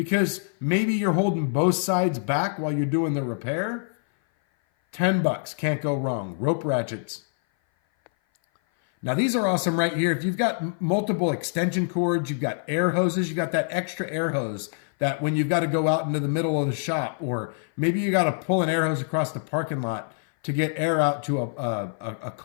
maybe you're holding both sides back while you're doing the repair. 10 bucks, can't go wrong. Rope ratchets. Now these are awesome right here. If you've got multiple extension cords, you've got air hoses, you've got that extra air hose that when you've got to go out into the middle of the shop, or maybe you got to pull an air hose across the parking lot to get air out to a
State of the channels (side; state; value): right; silent; 57 dB below the other